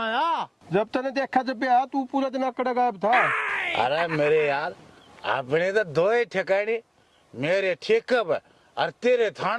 जब तने देखा जब आया तू पूरा दिन अकड़ गायब था। अरे मेरे यार अपने तो दो ही ठिकाने, मेरे ठेके पे और तेरे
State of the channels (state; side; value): identical; both; correlation 1.00